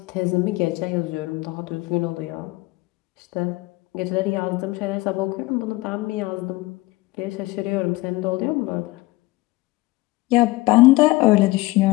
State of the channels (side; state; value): right; quieter; 20.5 dB